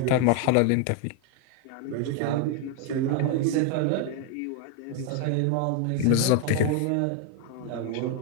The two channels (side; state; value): both; different; correlation 0.01